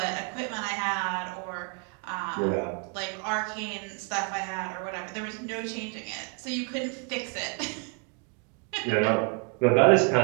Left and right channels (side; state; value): left; quieter; 36.8 dB